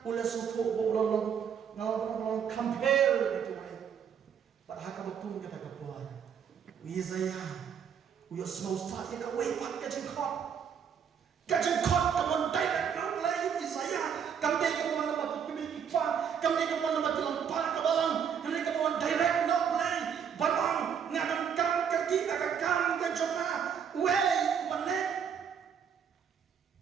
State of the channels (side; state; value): left; quieter; 7.6 dB